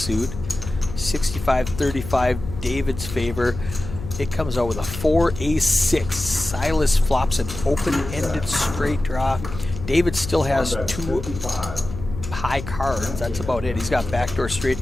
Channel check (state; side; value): noise; left; hum, 10 dB below the sound